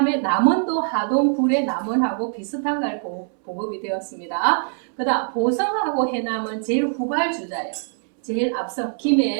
남원도 하동 불의 남원하고 비슷한 걸 보급이 되었습니다. 그 다음 보성하고 해남은 제일 후발주자예요. 제일 앞서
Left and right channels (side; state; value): left; silent; 64 dB below the other